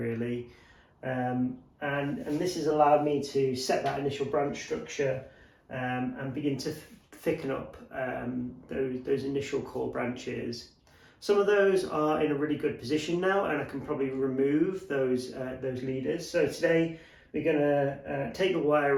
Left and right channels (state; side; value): identical; both; correlation 1.00